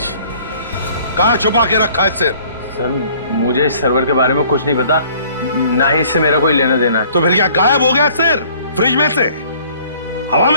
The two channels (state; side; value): inverted; both; correlation -0.56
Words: कहां छुपा के रखा है सिर? सर मुझे इस सर्वर के बारे में कुछ नहीं पता, ना ही इससे मेरा कोई लेना देना है। तो फिर क्या गायब हो गया सिर फ्रिज में से? हवा